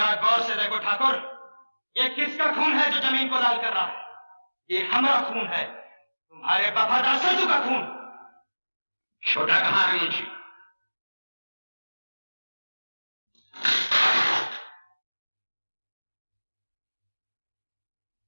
गौर से देखो ठाकुर, ये किसका खून है जो जमीन को लाल कर रहा है? ये हमारा खून है, तुम्हारे वफादार सरजू का खून। छोटा कहां है मुंशी?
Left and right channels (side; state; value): both; inverted; correlation -1.00